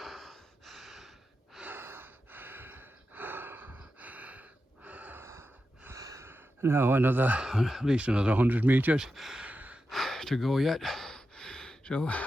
Now at least another 100 metres to go yet, so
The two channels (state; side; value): normal; both; correlation 0.90